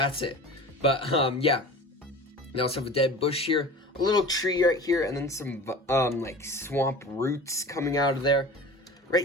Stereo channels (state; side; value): normal; both; correlation 0.37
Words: it. But, yeah. They also have a dead bush here, a little tree right here, and then some, like, swamp roots coming out of there.